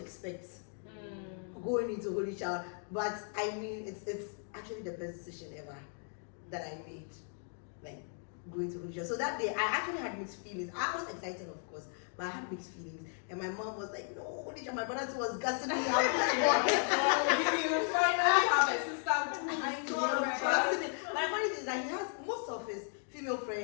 expect going into Holy Child. But I mean, it's actually the best decision ever that I made, like going to Holy Child. So that day I actually had mixed feelings. I was excited, of course, but I had mixed feelings. And my mom was like, no, Holy Child. My brother too was gassing me out. You finally have a sister who I is know, right. right? But the funny thing is that he has most of his female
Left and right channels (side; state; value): right; silent; 54 dB below the other